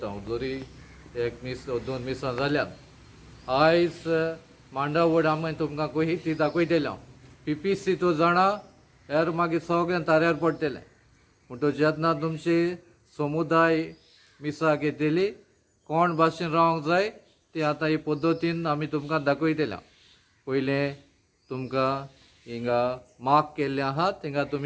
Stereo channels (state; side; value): identical; both; correlation 1.00